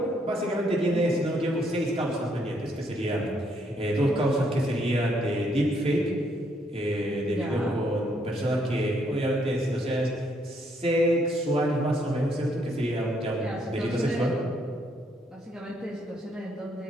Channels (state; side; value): normal; both; correlation 0.72